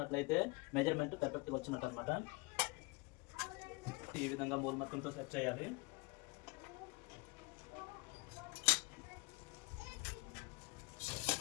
మెజర్మెంట్ పర్ఫెక్ట్గా వచ్చినట్టు అనమాట. ఈ విధంగా మూల మొత్తంతో సెట్ చేయాలి.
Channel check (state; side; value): quieter; right; 25.5 dB